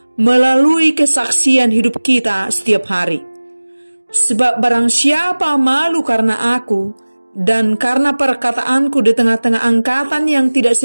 melalui kesaksian hidup kita setiap hari. Sebab barang siapa malu karena aku dan karena perkataanku di tengah-tengah angkatan yang tidak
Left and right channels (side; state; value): both; inverted; correlation -1.00